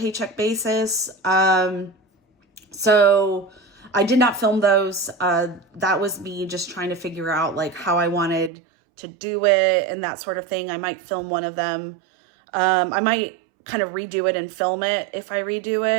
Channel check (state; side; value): drops out; left; at 8.5 s